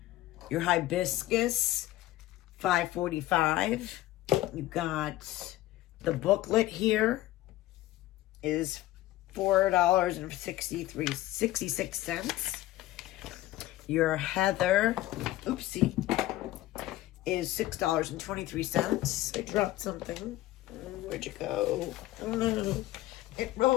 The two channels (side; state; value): right; quieter; 15.8 dB